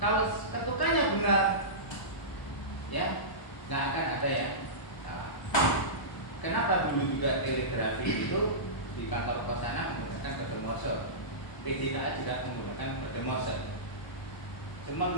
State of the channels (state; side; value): late; right; 1.0 ms